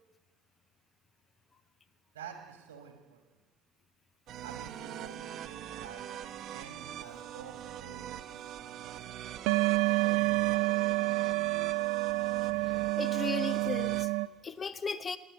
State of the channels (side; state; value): left; quieter; 11.9 dB